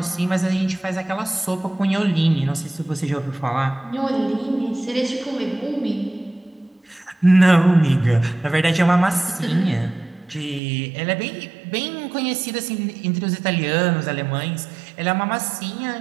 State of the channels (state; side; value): drops out; left; at 10.6 s